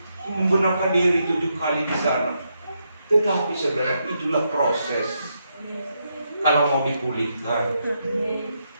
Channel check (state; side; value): inverted; both; correlation -0.81